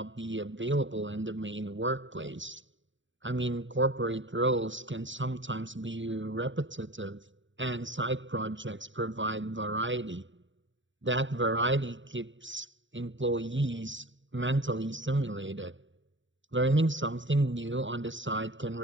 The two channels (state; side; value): late; left; 0.55 ms